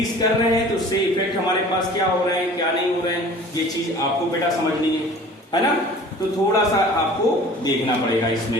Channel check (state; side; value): normal; both; correlation 0.45